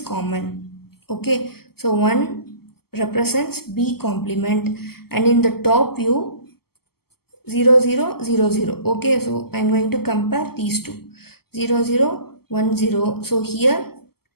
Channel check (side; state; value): right; late; 0.95 ms